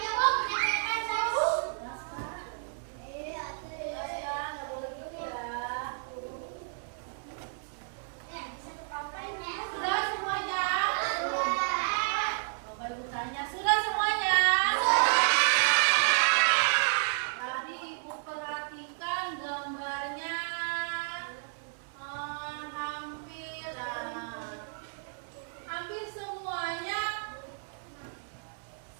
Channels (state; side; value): silent; left; digital silence